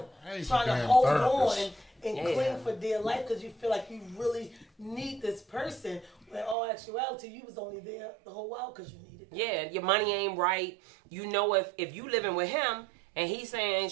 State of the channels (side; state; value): left; drops out; at 6.6 s